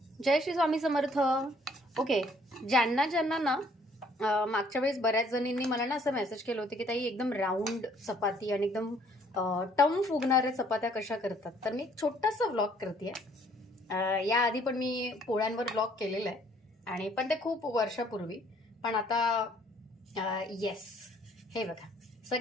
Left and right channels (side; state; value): both; normal; correlation 0.62